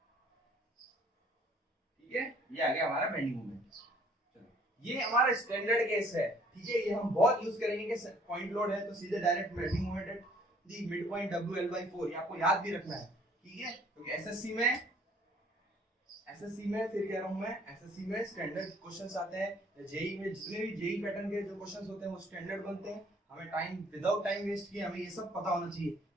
ठीक है। ये आ गया हमारा बेंडिंग मोमेंट। चलो ये हमारा स्टैंडर्ड केस है, ठीक है, ये हम बहुत यूज करेंगे कि पॉइंट लोड है तो सीधे direct bending moment at the mid point W l/4, ये आपको याद भी रखना है, ठीक है, क्योंकि एसएससी में फिर कह रहा हूं मैं, एसएससी में स्टैंडर्ड क्वेश्चंस आते हैं, जेई में जितने भी जेई पैटर्न के जो क्वेश्चंस होते हैं वो स्टैंडर्ड बनते हैं। हमें टाइम विदाउट टाइम वेस्ट किए हमें ये सब पता होना चाहिए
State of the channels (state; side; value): normal; both; correlation 0.59